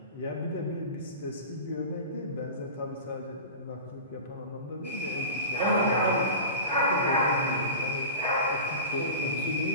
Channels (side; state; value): both; inverted; correlation -0.32